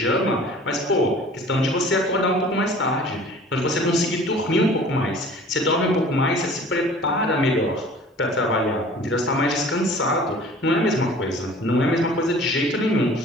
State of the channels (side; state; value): both; normal; correlation 0.47